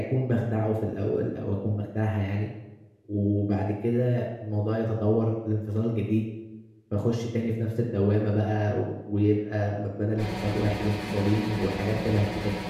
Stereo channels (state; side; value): identical; both; correlation 1.00